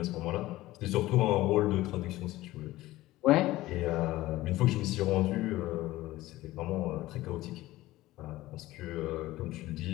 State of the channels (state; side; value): quieter; right; 17.1 dB